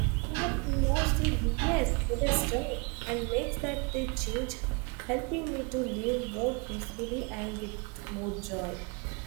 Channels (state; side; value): quieter; left; 31.9 dB